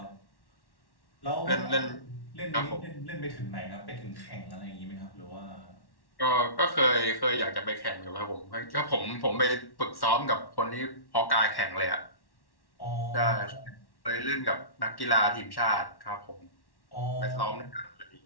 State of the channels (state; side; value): late; right; 1.1 ms